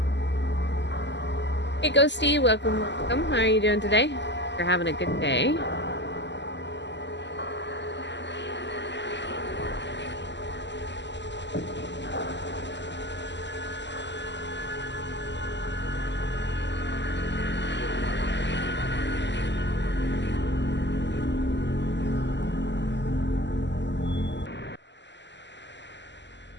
Hey Ghosty, welcome, welcome. How are you doing today? You're having a good day.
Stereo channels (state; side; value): late; right; 0.52 ms